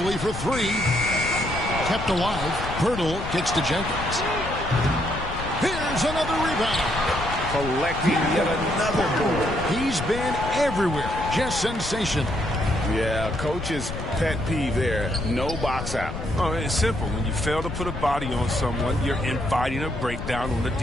for three. Kept alive. Pirtle kicks to Jenkins. Here's another rebound. Collecting yet another board. He's been everywhere. Just sensational. Yeah, coach's pet peeve there. No box out. Oh, it's simple. When you fail to put a body on someone, you're inviting a breakdown on the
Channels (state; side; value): noise; left; rumble, 8 dB below the sound